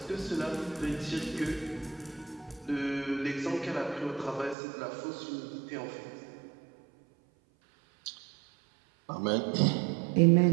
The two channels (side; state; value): left; drops out; at 4.5 s